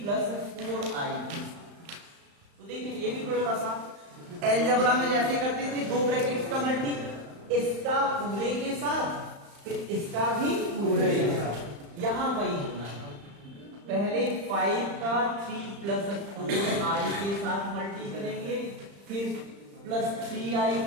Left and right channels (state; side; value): late; left; 35 ms